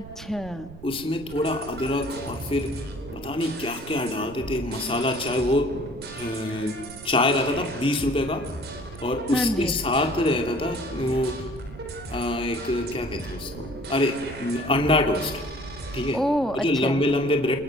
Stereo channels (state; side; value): noise; right; rumble, 16 dB below the sound